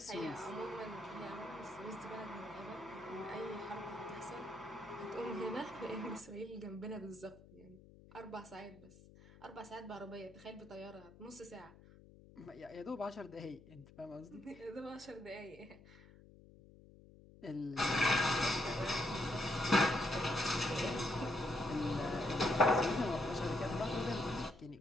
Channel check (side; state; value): left; noise; hum, 21 dB below the sound